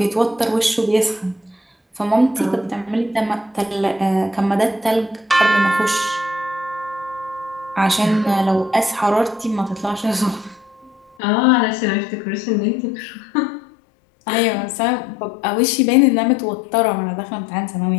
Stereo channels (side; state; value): right; drops out; at 11.2 s